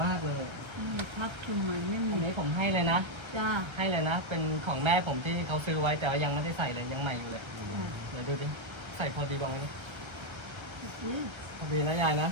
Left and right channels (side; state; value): left; late; 1.3 ms